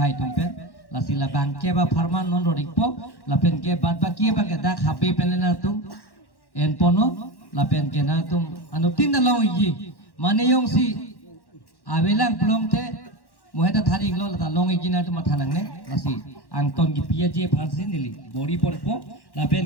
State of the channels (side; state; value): right; late; 1.1 ms